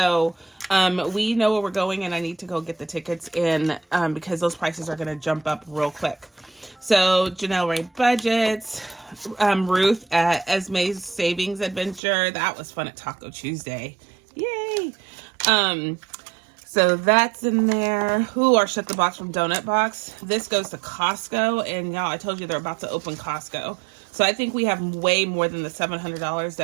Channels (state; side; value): drops out; left; at 12.0 s